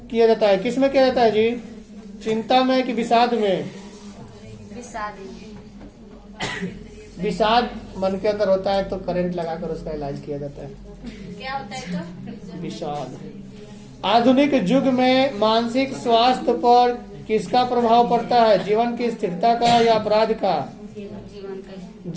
किया जाता है, किसमें किया जाता है जी? चिंता में कि विषाद में? विषाद मन के अंदर होता है तो करंट लगाकर उसका इलाज किया जाता है। क्या होता है तो? विषाद। आधुनिक युग में मानसिक स्वास्थ्य पर किसका प्रभाव पड़ता है? जीवन की स्थिरता का या अपराध का? जीवन का।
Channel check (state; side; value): identical; both; correlation 1.00